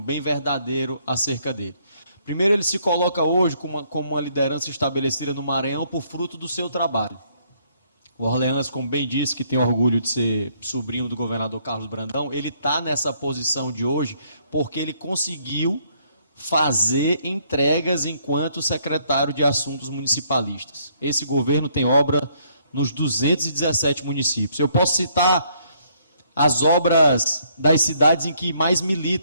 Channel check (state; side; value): inverted; both; correlation -0.68